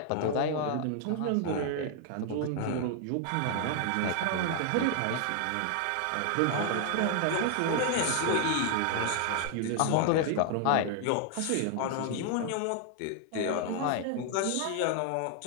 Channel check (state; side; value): different; both; correlation 0.00